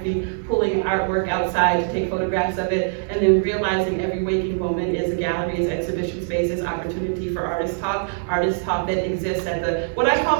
pulling artwork outside to take photographs of it, and then realizing every waking moment is a gallery, is exhibition space, is opportunity for artist talk that exists at the, what I call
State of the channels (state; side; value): silent; left; 63 dB below the other